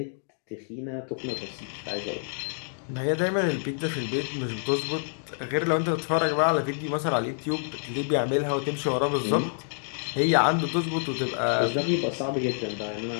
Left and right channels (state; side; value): silent; right; digital silence